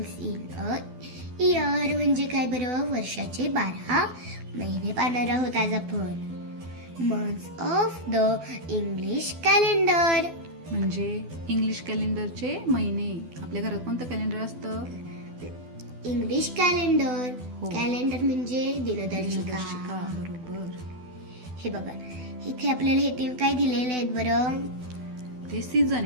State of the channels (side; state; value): left; late; 12 ms